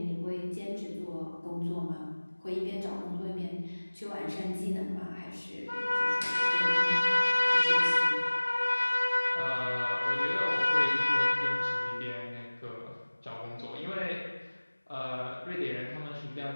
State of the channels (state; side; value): inverted; both; correlation -1.00